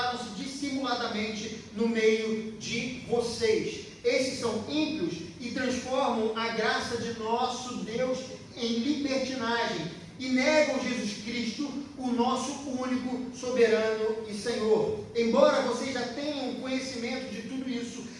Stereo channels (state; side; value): identical; both; correlation 1.00